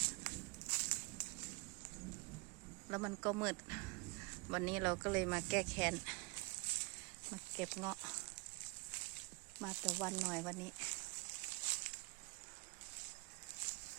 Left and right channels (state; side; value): quieter; left; 29.3 dB